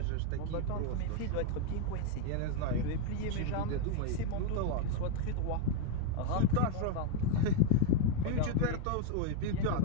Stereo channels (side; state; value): both; different; correlation 0.01